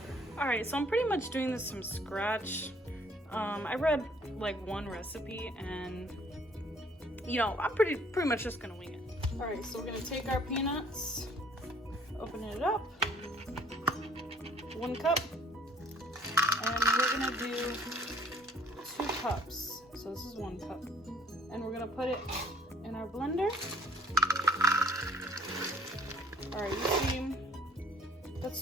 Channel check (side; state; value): both; normal; correlation 0.58